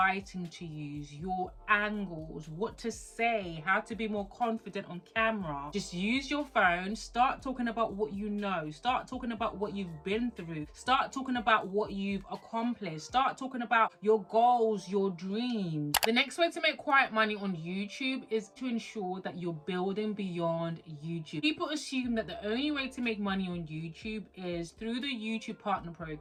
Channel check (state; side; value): identical; both; correlation 1.00